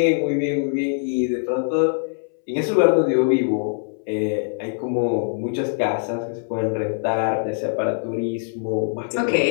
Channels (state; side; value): silent; right; 64 dB below the other